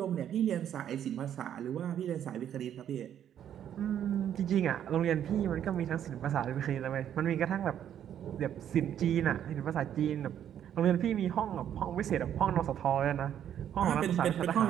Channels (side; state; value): left; quieter; 10.0 dB